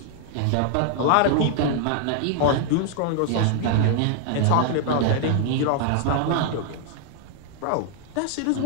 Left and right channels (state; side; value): different; both; correlation 0.00